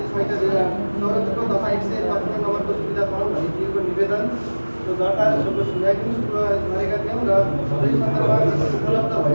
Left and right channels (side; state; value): both; inverted; correlation -1.00